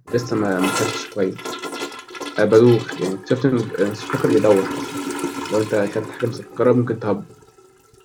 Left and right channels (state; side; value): identical; both; correlation 1.00